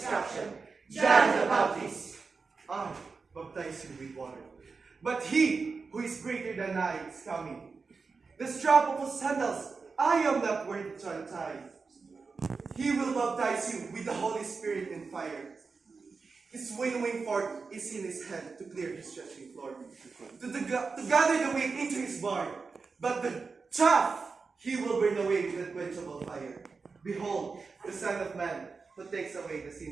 John the Baptist. I baptize you with water, but he who is greater than I is coming. The strap of his sandals I am not worthy to untie. He will baptize you with the Holy Spirit and fire. His winnowing fork is in his hand to clear his threshing floor, to gather the wheat into his barn, but the chaff he will burn away with unquenchable fire. Behold, the Son of Man, who takes away the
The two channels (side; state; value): left; quieter; 4.6 dB